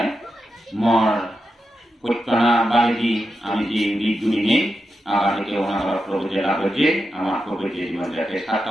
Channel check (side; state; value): both; normal; correlation 0.88